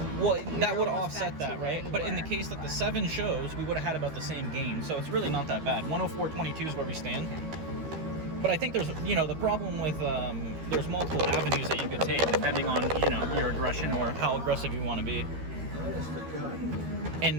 Well, that would have offset that, right? But in the case that the 7 shows, we would have had about the same gain. So it's really not that bad. 104.22 is where we stand. But I think there's, the problem with there's multiple avenues that you could take depending on, your aggression or how aggressive you want to be. And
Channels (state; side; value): late; left; 13 ms